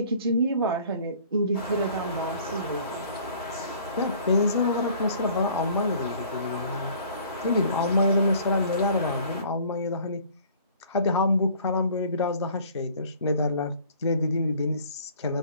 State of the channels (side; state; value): both; inverted; correlation -0.52